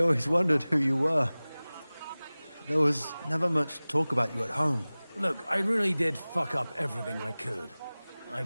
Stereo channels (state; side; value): inverted; both; correlation -0.99